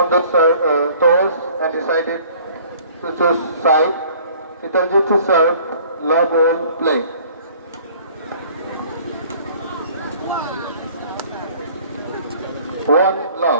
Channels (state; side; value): inverted; both; correlation -0.53